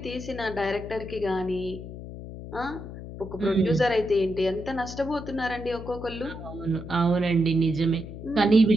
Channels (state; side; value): noise; left; hum, 11 dB below the sound